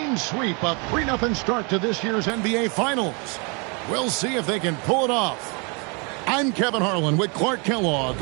sweep, a 3-0 start to this year's NBA Finals. We'll see if they can pull it off. I'm Kevin Harlan with Clark Kellogg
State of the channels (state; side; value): quieter; left; 33.0 dB